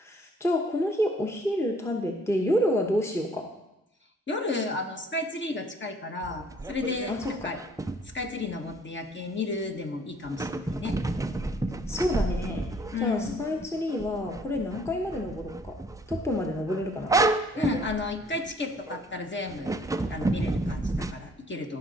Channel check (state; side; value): normal; both; correlation 0.59